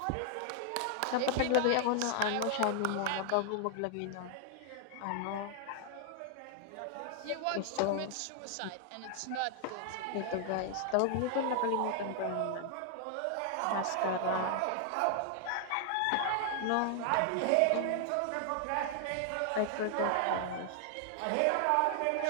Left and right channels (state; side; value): different; both; correlation 0.00